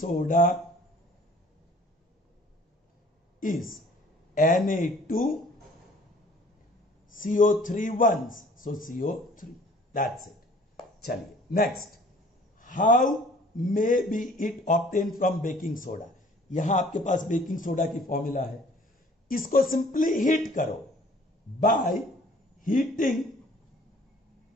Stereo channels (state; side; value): normal; both; correlation 0.53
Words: is Na2CO3 so CO3, that's it। चलिए next, how may be it obtain from baking soda. यहां आपके पास baking soda की formula है, इसको सिंपली हीट करो, by heating